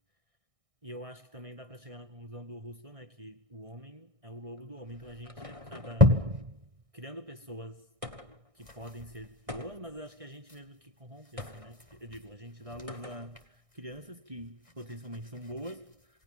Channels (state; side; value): late; left; 1.6 ms